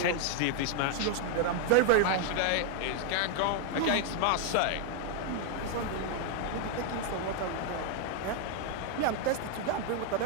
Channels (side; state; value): both; different; correlation 0.00